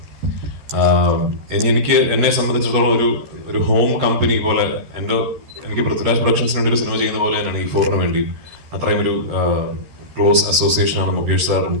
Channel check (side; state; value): left; late; 13 ms